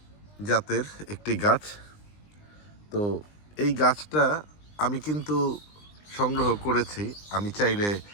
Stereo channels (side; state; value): right; late; 20 ms